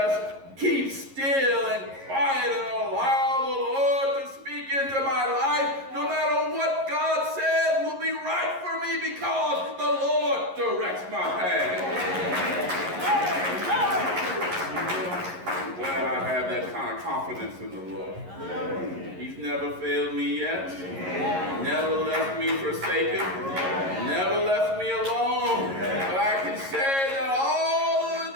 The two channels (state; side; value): late; left; 11 ms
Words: keep still and quiet and allow the Lord to speak into my life, no matter what God says will be right for me because the Lord directs my path. I'm glad I have that kind of confidence in the Lord. He's never failed me yet. Never left me forsaken. Never left me alone. But I can say that all of the